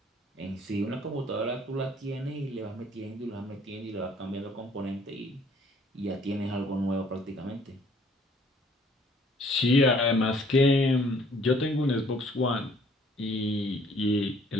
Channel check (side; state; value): both; normal; correlation 0.59